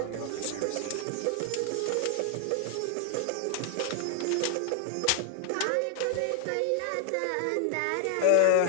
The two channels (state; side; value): different; both; correlation 0.00